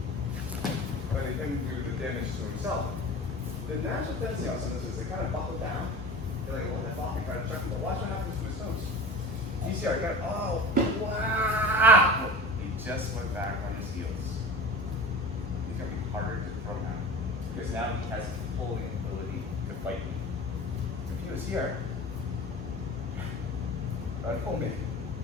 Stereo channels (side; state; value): both; normal; correlation 0.35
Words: letting him do the damage to himself. The natural tendency on some of this is they kind of buckle down. They're like, oh, that ball, kind of check him, but watch what happens to his toes. You see, I got, oh, wow! He just went back on his heels. It's going to be harder to throw now. Because now he has pulling ability to fight me. If he was here, I'd pull me.